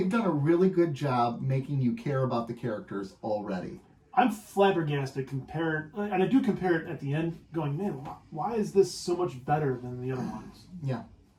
done a really good job making you care about the characters already. I'm flabbergasted compared, and I do compare it at the end, going, man, why is this so much better than the other ones? Yeah.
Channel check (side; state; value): both; identical; correlation 1.00